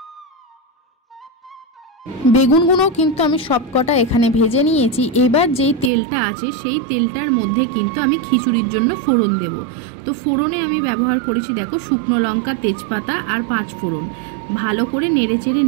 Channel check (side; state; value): left; drops out; at 5.9 s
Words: বেগুনগুলো কিন্তু আমি সবকটা এখানে ভেজে নিয়েছি। এবার যেই তেলটা আছে সেই তেলটার মধ্যে কিন্তু আমি খিচুড়ির জন্য ফোড়ন দেব। তো ফোড়নে আমি ব্যবহার করেছি দেখো শুকনো লঙ্কা, তেজপাতা আর 5 ফোড়ন। ভালো করে নেড়েচেড়ে